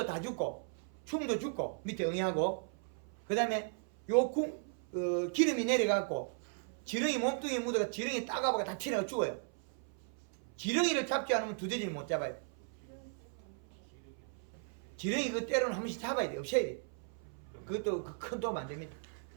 다 죽고 충도 죽고 밑에 응애하고 그 다음에 기름이 내려가고 지렁이 몸뚱이에 묻어가 지렁이 따가보가 다 튀어나가 죽어요. 지렁이를 잡지 않으면 두더지를 못 잡아요. 지렁이 그 때로는 한 번씩 잡아야 돼. 없애야 돼. 그것도 큰 도움 안 됩니다.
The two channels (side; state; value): left; silent; 53 dB below the other